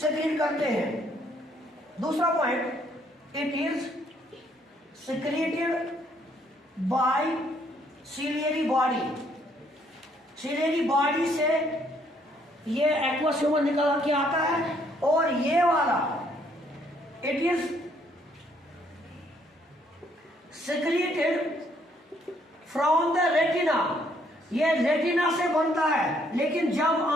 करते हैं। दूसरा point, it is secreted bye ciliary body. Ciliary body से ये एक्वस ह्यूमर निकल के आता है। और ये वाला it is secreted from the retina, ये रेटिना से बनता है। लेकिन जब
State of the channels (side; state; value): both; normal; correlation 0.68